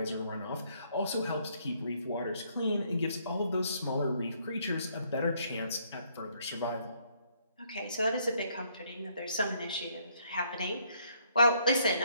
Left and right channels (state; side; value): inverted; both; correlation -0.69